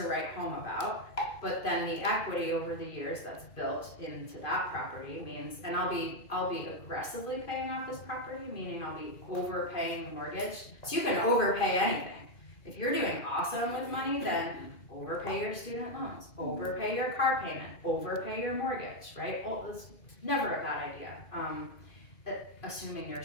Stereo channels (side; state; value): right; late; 2.5 ms